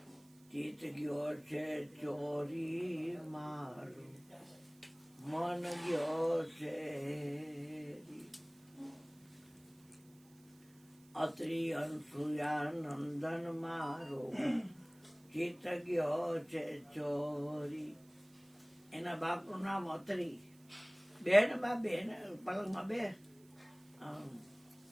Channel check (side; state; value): right; noise; hiss, 28 dB below the sound